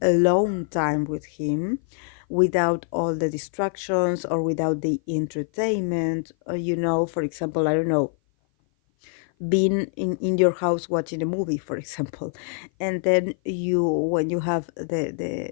alone time with him without all the distractions or without the entertainment, for example, I don't know, being in your house watching a movie, for example, and then when you have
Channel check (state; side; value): silent; right; 56 dB below the other